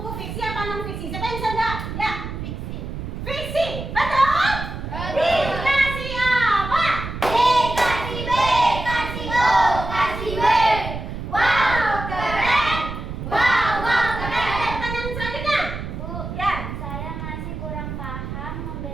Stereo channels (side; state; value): right; noise; rumble, 7 dB below the sound